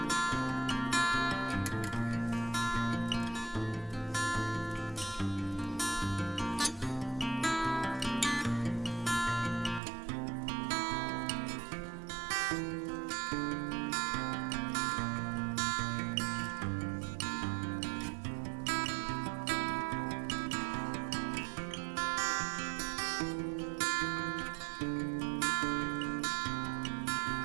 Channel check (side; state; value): left; drops out; at 9.8 s